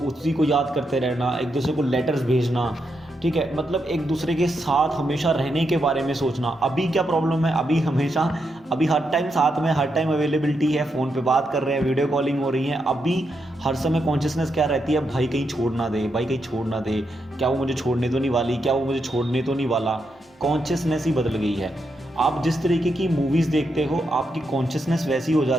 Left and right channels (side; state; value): both; normal; correlation 0.83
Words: उसी को याद करते रहना, एक दूसरे को लेटर्स भेजना, ठीक है, मतलब एक दूसरे के साथ हमेशा रहने के बारे में सोचना। अभी क्या प्रॉब्लम है, अभी हर टाइम साथ में, हर टाइम अवेलेबिलिटी है, फ़ोन पे बात कर रहे हैं, वीडियो कॉलिंग हो रही है। अभी हर समय कॉन्शियसनेस क्या रहती है, भाई कहीं छोड़ ना दे, भाई कहीं छोड़ ना दे, क्या वो मुझे छोड़ने तो नहीं वाली, क्या वो मुझे छोड़ने तो नहीं वाला। कॉन्शियसनेस ही बदल गई है। आप जिस तरीके की मूवीज़ देखते हो, आपकी कॉन्शियसनेस वैसी हो